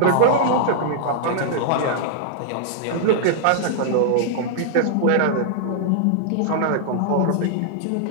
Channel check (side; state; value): both; different; correlation -0.01